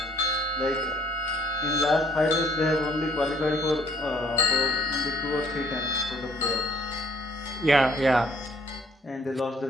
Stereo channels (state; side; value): normal; both; correlation 0.61